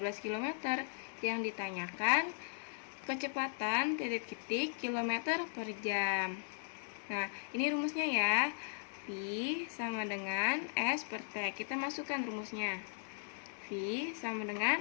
km. Yang ditanyakan kecepatan kilometer per jam. Nah, ini rumusnya ya. V sama dengan S per T. Kita masukkan rumusnya. V sama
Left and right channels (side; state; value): right; silent; digital silence